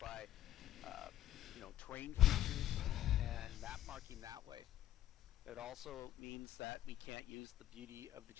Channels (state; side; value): quieter; right; 12.4 dB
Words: terrain features and map marking that way. It also means that we can't use the beauty of the